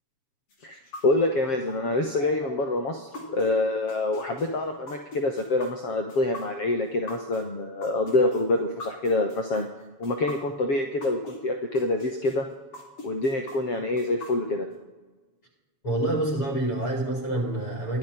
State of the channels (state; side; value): late; right; 7.1 ms